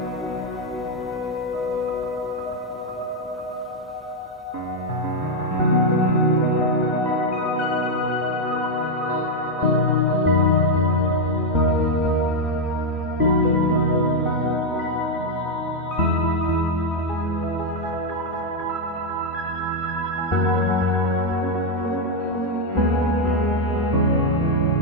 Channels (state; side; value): normal; both; correlation 0.02